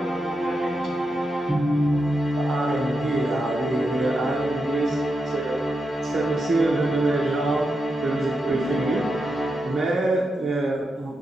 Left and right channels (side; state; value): both; normal; correlation 0.86